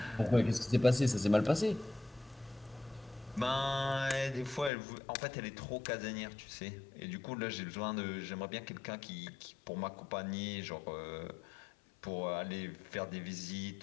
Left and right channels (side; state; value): right; drops out; at 4.7 s